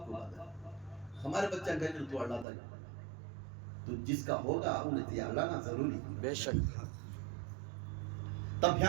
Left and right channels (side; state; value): left; drops out; at 2.5 s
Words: کو بات ہے ہمارے بچہ کہے کہ تو اڑ لاتا ہے تو جس کا ہوگا انہیں تیار لانا ضروری بے شک تب